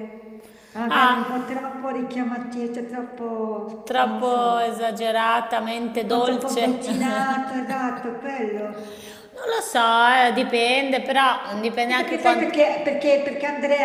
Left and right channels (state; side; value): identical; both; correlation 1.00